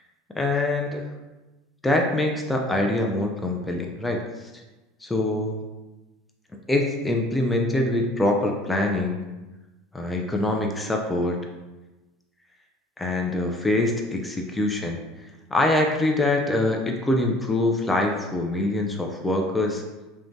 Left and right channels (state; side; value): normal; both; correlation 0.56